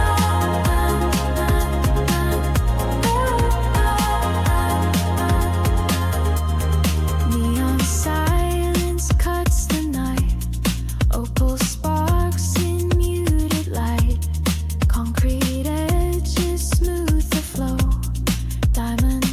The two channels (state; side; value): identical; both; correlation 1.00